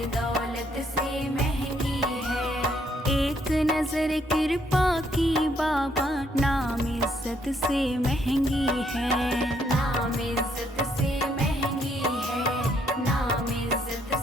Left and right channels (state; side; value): normal; both; correlation 0.71